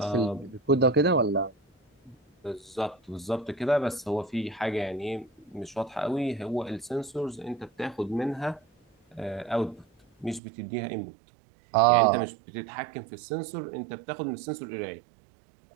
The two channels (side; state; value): left; drops out; at 10.4 s